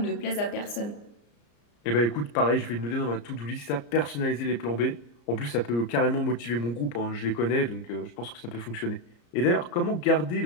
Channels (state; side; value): late; right; 34 ms